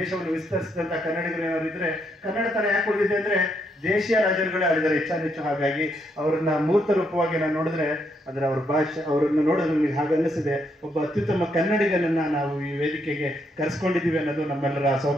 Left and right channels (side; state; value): both; normal; correlation 0.76